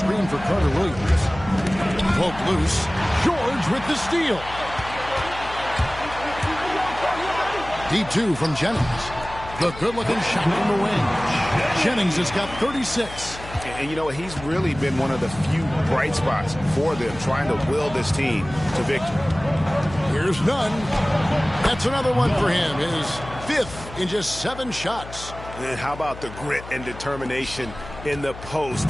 for Carter Williams. Poke loose. George with the steal. Deep 2 from Jennings. The good-looking shot from the wing. Jennings has got 36. And you know, he's really been one of the few bright spots for them, trying to will this team to victory. Here's Nunn. That's another one for him. His 5th in just 7 shots. And how about the grit and determination in the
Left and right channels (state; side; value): noise; left; hum, 14 dB below the sound